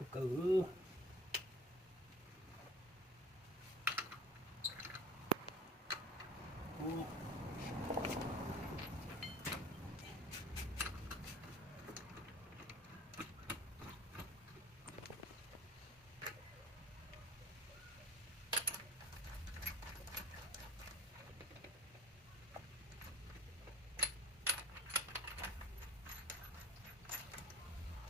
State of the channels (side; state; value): both; normal; correlation 0.47